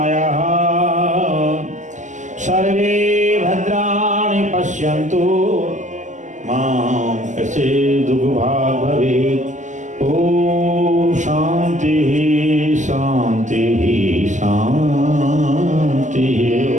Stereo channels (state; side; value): late; left; 0.35 ms